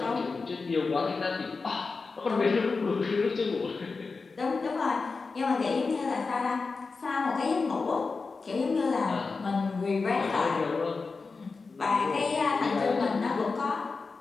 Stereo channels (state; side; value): quieter; right; 4.3 dB